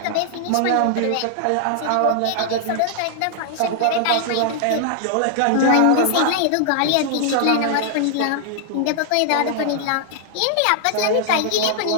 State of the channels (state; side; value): different; both; correlation -0.01